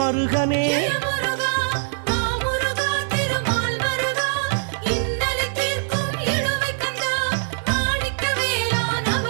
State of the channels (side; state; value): left; silent; 64 dB below the other